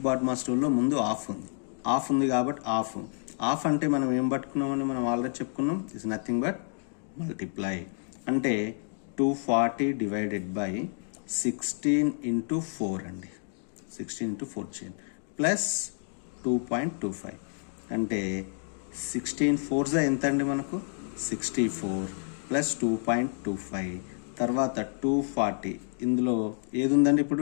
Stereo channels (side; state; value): right; silent; 58 dB below the other